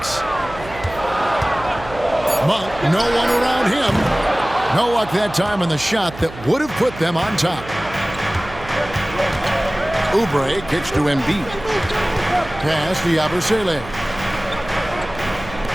Monk, no one around him. No luck that time on the shot that would have put them on top. Oubre kicks to Embiid. Pass to Yabusele.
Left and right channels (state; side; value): noise; right; hum, 15 dB below the sound